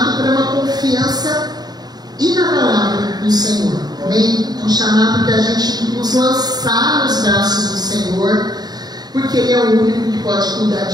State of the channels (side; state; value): left; late; 0.19 ms